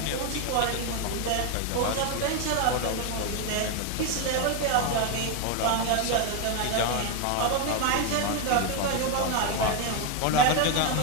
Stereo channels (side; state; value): both; different; correlation 0.01